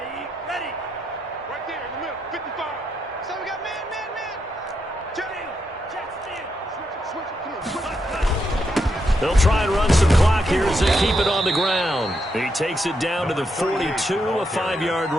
They'll try and run some clock here as they keep it on the ground. He takes it down to the 42, a 5-yard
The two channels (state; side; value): normal; both; correlation 0.81